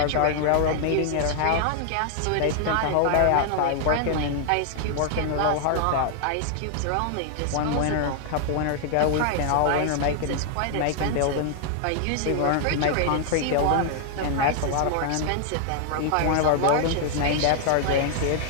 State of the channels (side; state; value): both; different; correlation 0.00